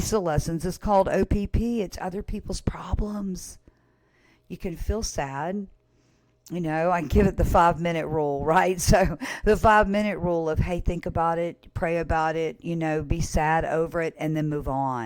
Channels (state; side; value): identical; both; correlation 1.00